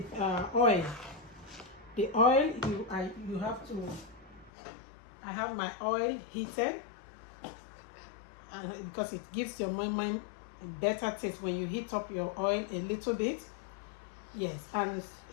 The oil you have to. I have my oil heated. And because it gives your moimoi a better taste when you heat up your oil a little bit. Yes, and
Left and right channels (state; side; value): drops out; right; at 4.5 s